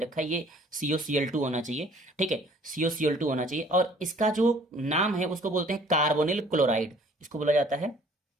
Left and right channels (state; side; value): normal; both; correlation 0.55